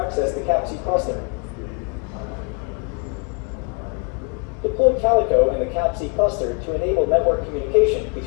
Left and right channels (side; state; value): right; quieter; 35.6 dB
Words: the CAPC cluster. Deploy Calico and the CAPC cluster to enable network communication